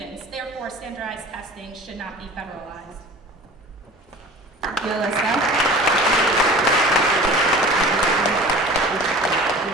Therefore, standardized testing should not be federalized. Thank you, Alyssa.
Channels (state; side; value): normal; both; correlation 0.41